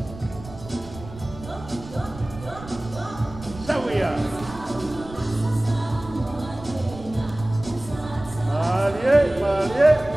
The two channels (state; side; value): noise; right; rumble, 15 dB below the sound